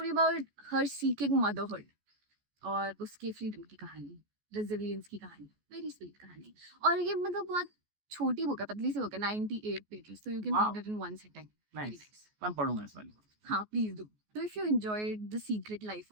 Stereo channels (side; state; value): left; late; 14 ms